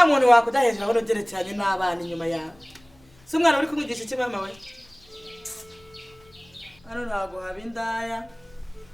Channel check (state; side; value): noise; left; rumble, 29 dB below the sound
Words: muntu wakudahejera abona ugerekeranye n'abana inyuma yawe si umwana uri kumwigisha iki mama we hano ntabwo haba indaya